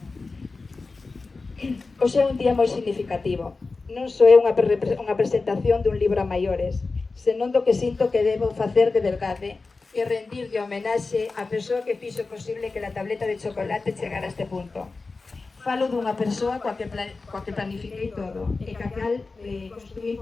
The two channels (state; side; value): quieter; right; 3.9 dB